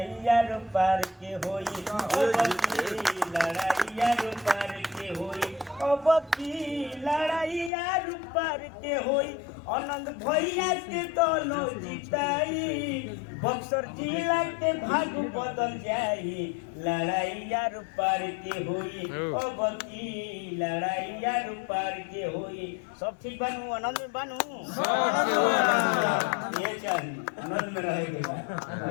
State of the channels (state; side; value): drops out; right; at 7.7 s